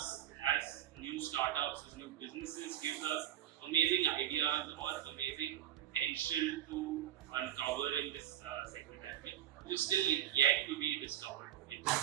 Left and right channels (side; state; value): left; quieter; 11.6 dB